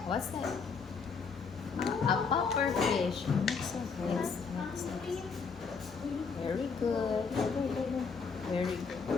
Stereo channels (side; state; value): right; quieter; 5.3 dB